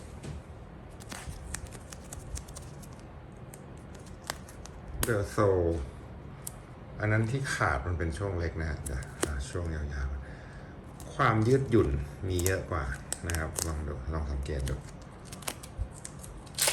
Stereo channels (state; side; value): identical; both; correlation 1.00